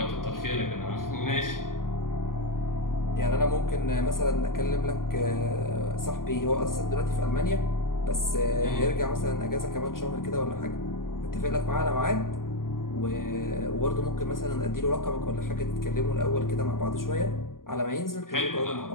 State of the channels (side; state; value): right; late; 0.91 ms